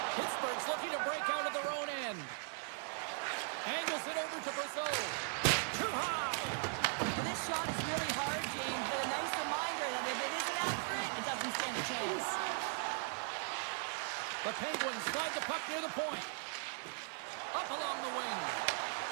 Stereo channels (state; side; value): silent; left; 52 dB below the other